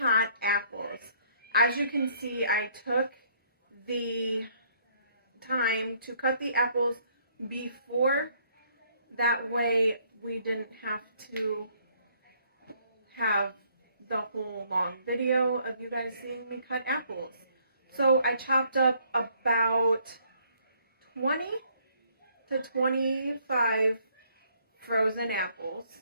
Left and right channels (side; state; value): both; inverted; correlation -0.65